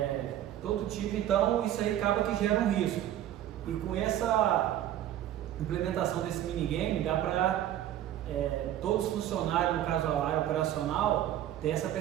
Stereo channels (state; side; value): quieter; left; 12.0 dB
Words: todo tipo, então isso aí acaba que gera um risco. E com essa implementação desse minigame, dá para todos os funcionários, no caso a área operacional, ter essa